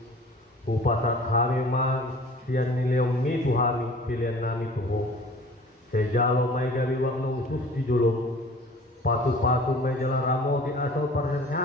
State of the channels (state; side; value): normal; both; correlation 0.46